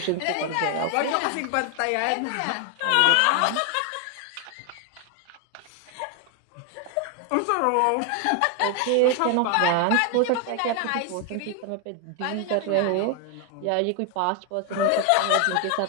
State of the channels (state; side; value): different; both; correlation 0.00